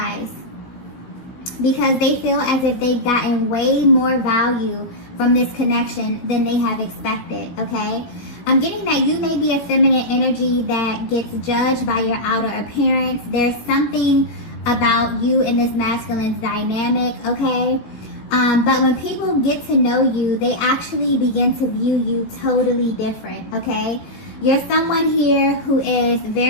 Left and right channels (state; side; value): late; right; 17 ms